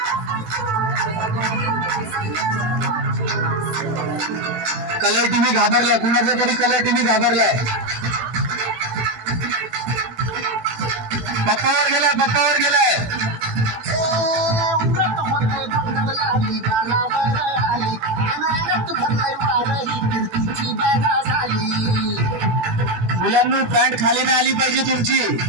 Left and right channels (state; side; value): late; left; 18 ms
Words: कलर टीव्ही घाबरलाय, कुणाचा तरी कलर टीव्ही घाबरलाय. पप्पावर गेलाय, पप्पावर गेलाय. मुलांनी पॅन्ट खाली नाही आली पाहिजे तुमची.